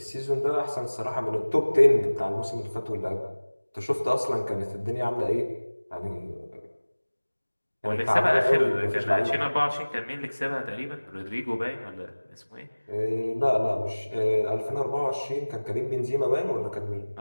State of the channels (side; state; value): both; inverted; correlation -1.00